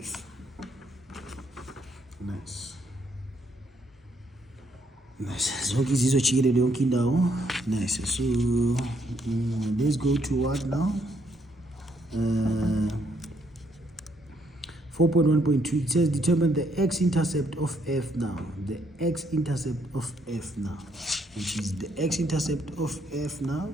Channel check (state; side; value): normal; both; correlation 0.71